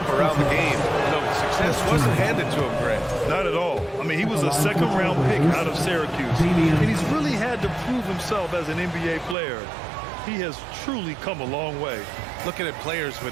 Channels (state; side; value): drops out; left; at 9.3 s